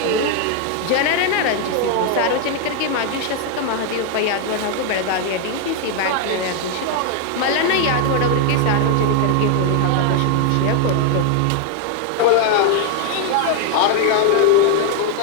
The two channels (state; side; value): different; both; correlation 0.00